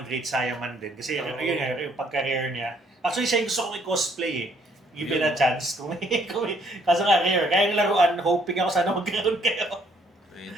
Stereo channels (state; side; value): normal; both; correlation 0.66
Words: Great Saiyaman din. Kasi yun nga, yung pagka-rare niya. Actually, siya yung gusto kong i-cosplay eh. Given a chance. Kaso nga, rare. Kaya yung laruan, hoping ako sana magkaroon kayo.